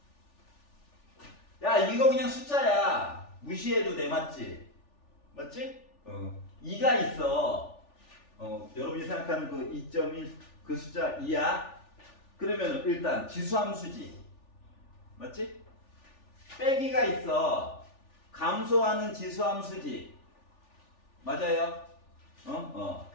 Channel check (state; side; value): late; right; 3.4 ms